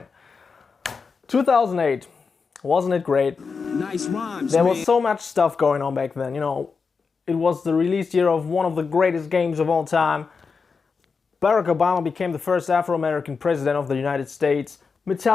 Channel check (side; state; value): right; quieter; 5.1 dB